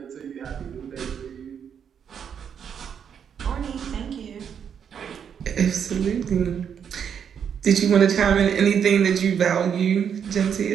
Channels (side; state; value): left; quieter; 7.8 dB